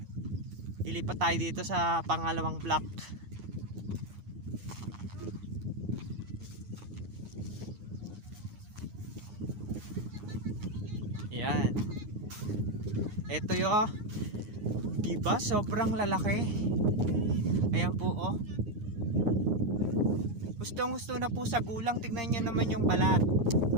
Lilipat tayo dito sa pangalawang block. Ayan. Ito yung, diba? Sobrang lalaki. Ayan po, oh. Gustong-gusto na po sa gulang. Tignan nyo naman yung balat.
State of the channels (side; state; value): left; late; 9.6 ms